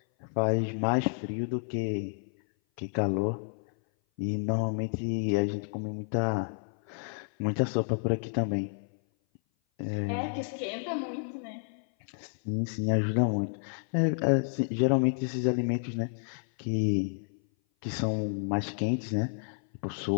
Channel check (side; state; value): right; silent; 56 dB below the other